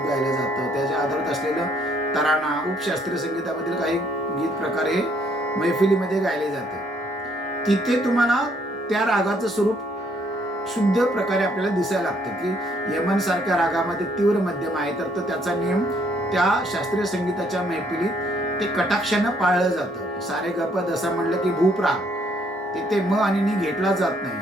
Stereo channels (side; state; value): both; normal; correlation 0.67